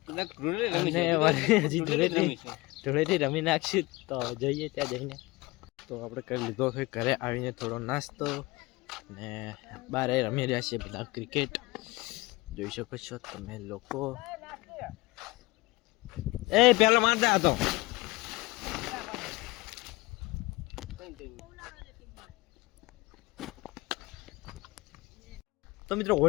અને હજી ધૂળેટી રમી નાખશું. તો જઈએ ત્યાં જઈને. તો આપણે કરી લીધો છે ઘરે આવીને થોડો નાસ્તો ને બહાર રમી રહ્યા છીએ બધા ક્રિકેટ. જોઈ શકો છો તમે લોકો. એ પેલો મારતા હતો. તો મિત્રો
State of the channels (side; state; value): right; quieter; 21.6 dB